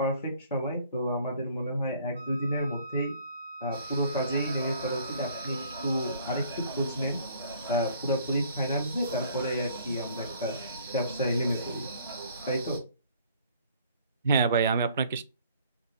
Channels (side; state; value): both; inverted; correlation -0.58